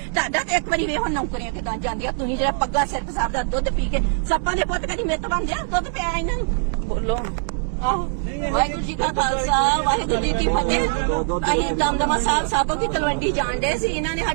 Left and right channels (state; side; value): silent; left; digital silence